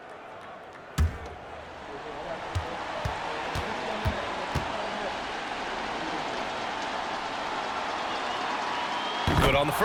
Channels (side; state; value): both; identical; correlation 1.00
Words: Good on the